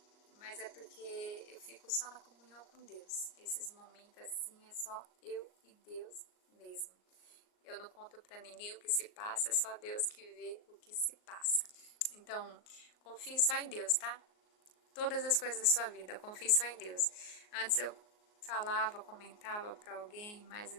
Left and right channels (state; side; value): late; right; 38 ms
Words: Mas é porque eu fico só na comunhão com Deus. Esses momentos assim é só eu e Deus mesmo. Eu não conto pra ninguém o que se passa, é só Deus que vê o que se passa. Então, confie só em Deus, tá? Todas as coisas da sua vida, confie só em Deus. Antes eu falava, comentava pra alguém, mas